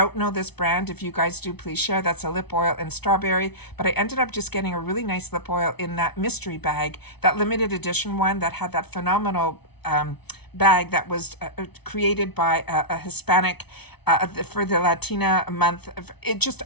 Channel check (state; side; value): late; right; 0.99 ms